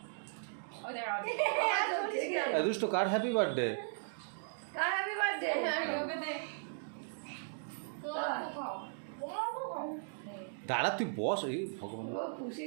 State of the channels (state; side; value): silent; left; digital silence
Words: ওই দেখ আবার দুষ্ট কার হ্যাপি বার্থডে কার হ্যাপি বার্থডে ওকে দে দাঁড়া তুই বস এই ভগবান ও